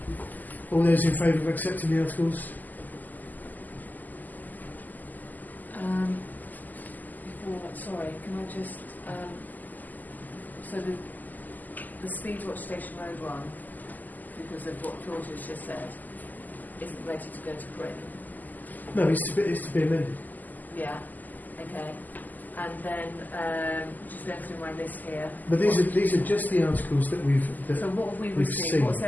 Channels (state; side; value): late; right; 0.083 ms